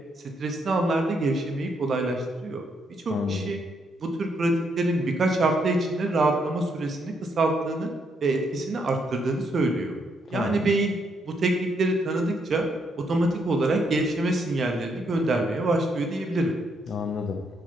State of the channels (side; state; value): both; normal; correlation 0.75